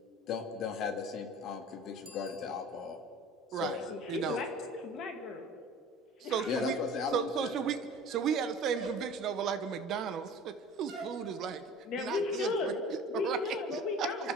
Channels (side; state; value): both; normal; correlation 0.42